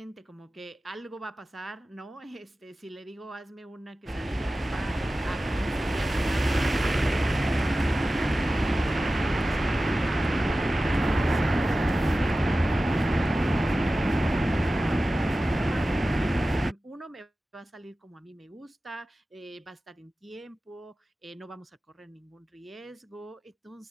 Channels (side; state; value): both; normal; correlation 0.95